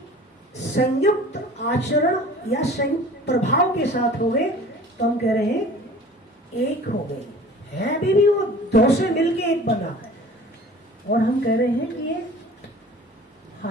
संयुक्त आचरण या संयुक्त प्रभाव के साथ हो गए, तो हम कह रहे हैं एक हो गए। है अभी भी वो दो से मिलके एक बना है, और हम कह रहे हैं कि ये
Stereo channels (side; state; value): both; normal; correlation 0.44